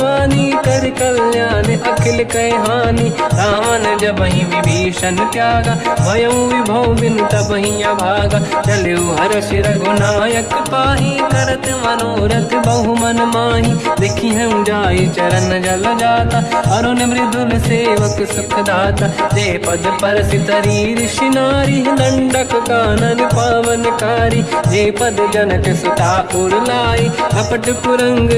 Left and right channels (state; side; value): identical; both; correlation 1.00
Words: कर कल्याण अखिल कह हानि। रावण जबहि विभीषण त्यागा, भयउ विभव बिनु तबहि अभागा। चलऊ हर्ष रघुनायक पाहि, करत मनोरथ बहु मन माहि। देखी हूँ जाई चरण जल जाता, अरुण मृदुल सेवक सुख दाता। जे पद पर सितरी ऋषि नारी, दंडक कानन पावनकारी। जे पद जनक सुता उर लाई, अपट पुरंग